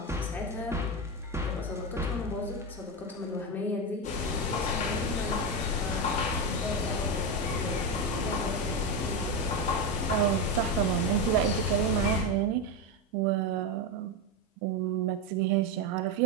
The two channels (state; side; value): normal; both; correlation 0.12